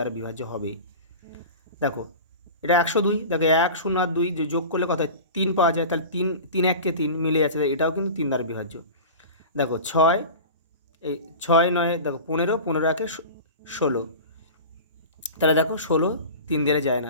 বিভাজ্য হবেই। দেখো এটা 102, দেখো 1 0 আর 2 যে যোগ করলে কত হয়? 3 পাওয়া যায়, তাহলে 3 3 1 কে 3 মিলে যাচ্ছে, এটাও কিন্তু 3 দ্বারা বিভাজ্য। দেখো 6, এই 6 9, দেখো 15, 15 1 16, তাহলে দেখো 16 3 দ্বারা যায় না,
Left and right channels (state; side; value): inverted; both; correlation -0.34